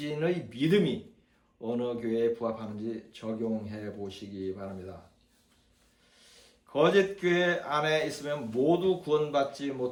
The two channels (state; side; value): identical; both; correlation 1.00